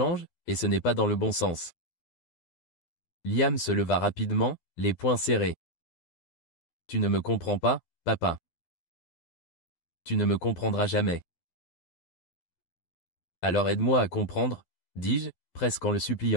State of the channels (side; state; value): right; late; 12 ms